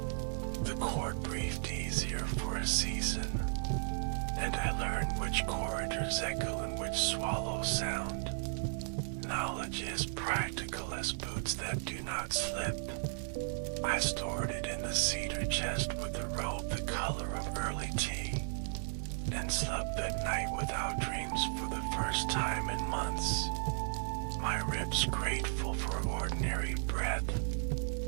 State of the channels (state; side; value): silent; left; digital silence